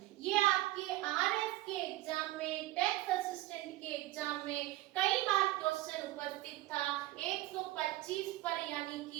ये आपके आरएस के एग्जाम में, टैक्स असिस्टेंट के एग्जाम में कई बार क्वेश्चन उपस्थित था। 125 पर यानी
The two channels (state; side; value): quieter; left; 17.0 dB